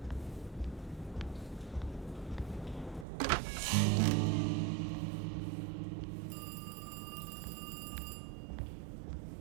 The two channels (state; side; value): drops out; left; at 3.1 s